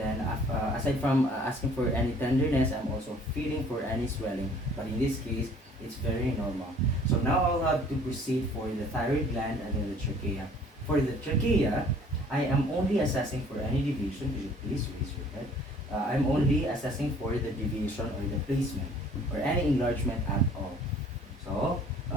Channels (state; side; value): normal; both; correlation 0.54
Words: aside from asking for any tenderness, I'm also feeling for any swelling. But in this case, it's very normal. So now I'll have to proceed for the thyroid gland and then the trachea. For the trachea, I am only assessing for any deviation. Could you please raise your head? I'm only assessing for the deviation or the placement or any enlargement at all. So,